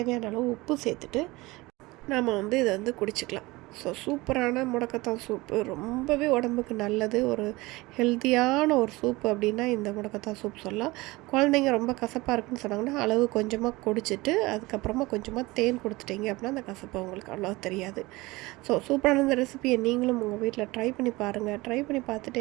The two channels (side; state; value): left; quieter; 21.5 dB